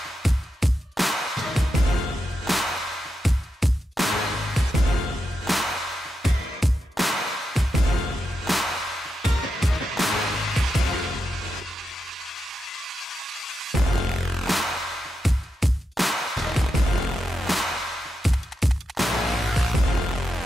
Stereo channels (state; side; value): normal; both; correlation 0.87